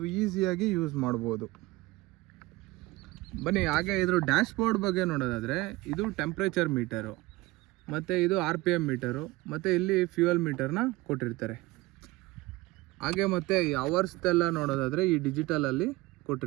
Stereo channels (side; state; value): left; quieter; 20.5 dB